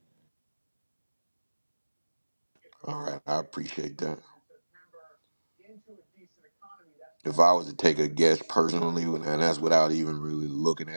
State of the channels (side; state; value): both; inverted; correlation -1.00